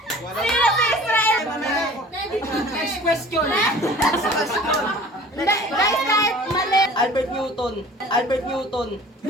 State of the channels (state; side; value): normal; both; correlation 0.45